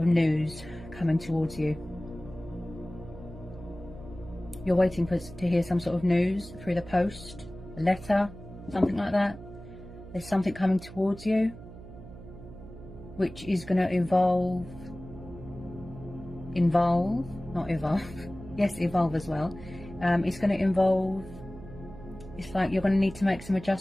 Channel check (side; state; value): right; noise; hum, 15 dB below the sound